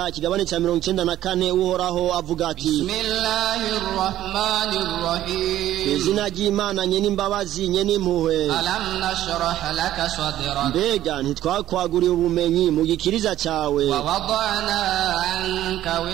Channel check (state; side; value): quieter; left; 13.0 dB